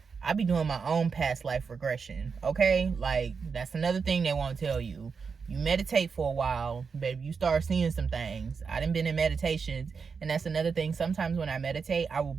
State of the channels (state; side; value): quieter; left; 5.5 dB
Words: I be doing my own past life regression, okay? Like, that's another thing they won't tell you. You meditate for a while, baby, you start seeing some things. I done been in meditations, and that's another thing. Sometimes when I meditate, I will